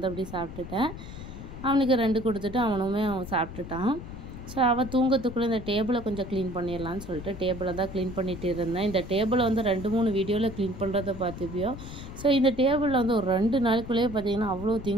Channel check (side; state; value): left; noise; rumble, 11 dB below the sound